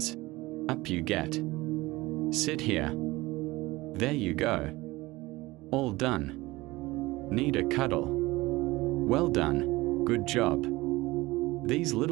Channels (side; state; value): left; quieter; 20.3 dB